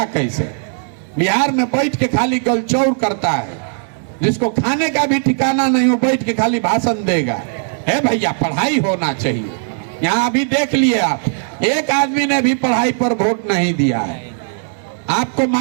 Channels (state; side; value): silent; left; 64 dB below the other